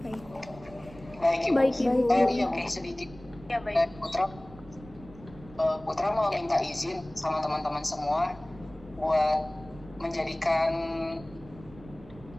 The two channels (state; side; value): noise; right; rumble, 20 dB below the sound